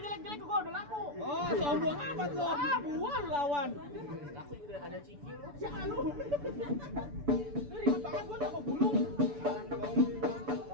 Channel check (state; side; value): late; left; 6.9 ms